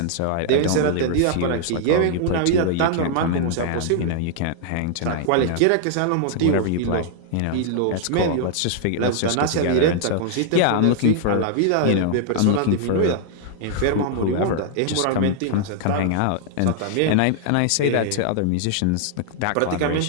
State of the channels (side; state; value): both; different; correlation -0.01